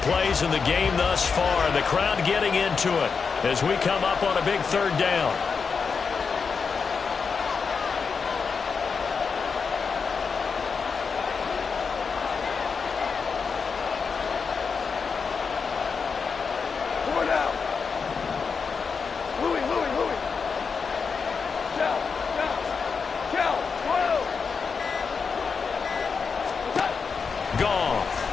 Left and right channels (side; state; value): right; quieter; 5.5 dB